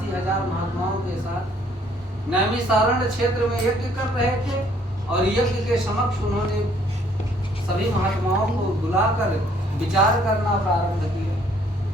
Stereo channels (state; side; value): normal; both; correlation 0.63